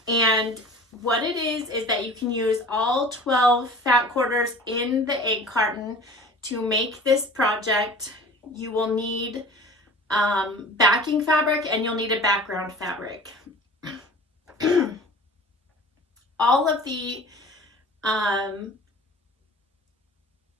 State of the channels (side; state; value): both; normal; correlation 0.42